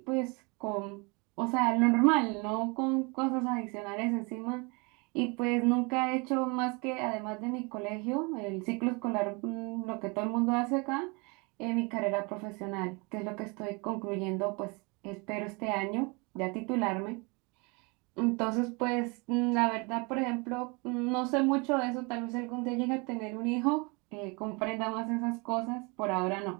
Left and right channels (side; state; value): left; quieter; 29.5 dB